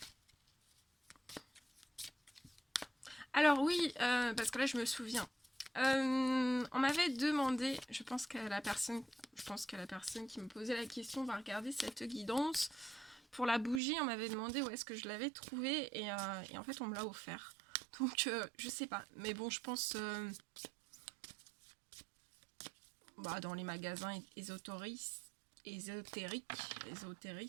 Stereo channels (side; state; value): left; drops out; at 13.8 s